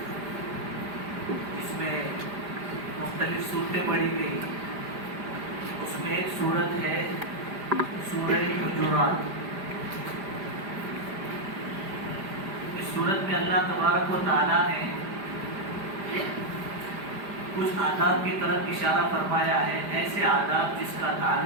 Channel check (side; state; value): left; late; 5.0 ms